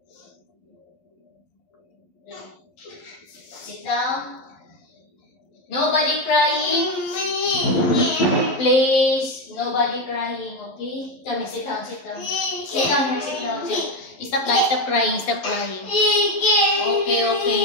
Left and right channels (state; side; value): late; right; 11 ms